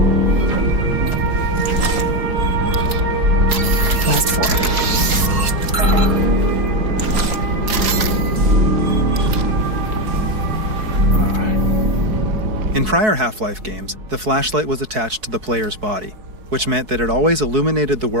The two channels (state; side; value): late; left; 4.7 ms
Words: Last four. In prior Half-Life games, the flashlight was attached to the player's body, which meant that it always illuminated the